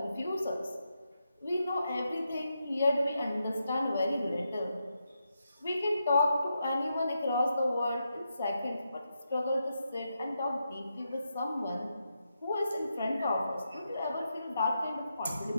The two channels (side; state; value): both; inverted; correlation -0.85